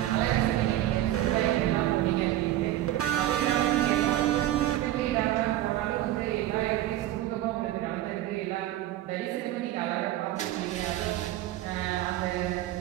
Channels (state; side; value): quieter; left; 14.0 dB